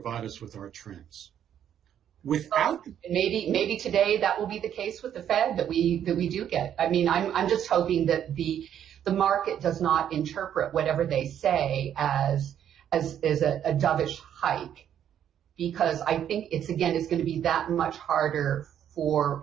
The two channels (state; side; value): quieter; left; 9.8 dB